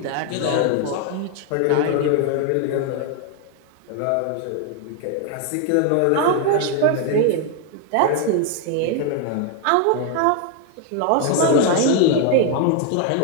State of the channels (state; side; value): different; both; correlation 0.01